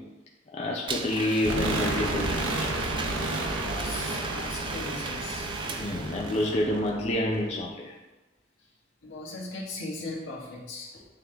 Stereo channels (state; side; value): normal; both; correlation 0.47